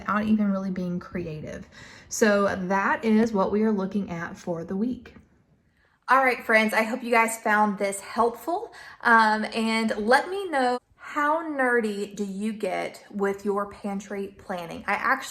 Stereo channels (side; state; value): both; identical; correlation 1.00